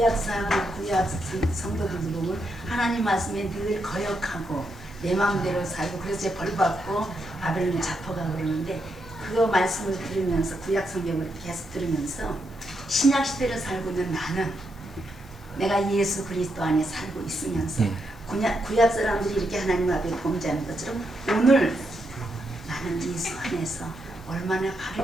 성도들도 보면 하나님 말씀에 늘 거역하고 내 마음대로 살고 그래서 벌 받고 바벨론에 잡혀가고 그러는데 그 말씀을 들으면서 구약 성경을 계속 들으면서 신약 시대를 살고 있는 나는 내가 예수 그리스도 안에 살고 있으면서 구약 사람들이 이렇게 하나님 앞에 범죄하는 것처럼 오늘 나는 예수 안에서 얼마나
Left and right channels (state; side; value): normal; both; correlation 0.81